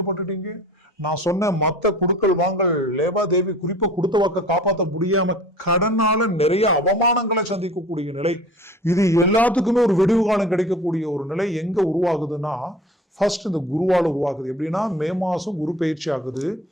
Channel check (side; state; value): both; normal; correlation 0.44